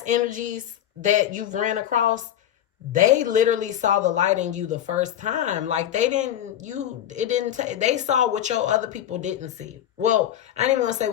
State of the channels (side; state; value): right; quieter; 11.0 dB